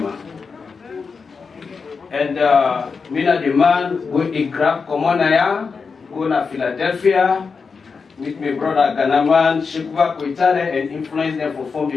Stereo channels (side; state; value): right; quieter; 5.1 dB